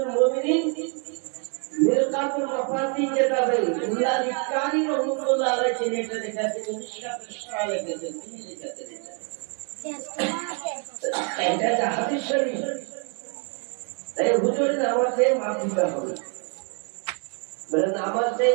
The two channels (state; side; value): quieter; left; 38.6 dB